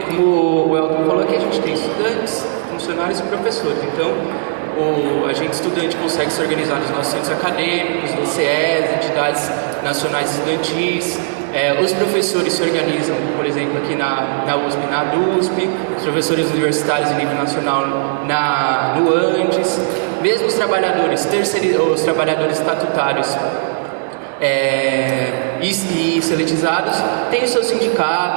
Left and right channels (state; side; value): silent; left; digital silence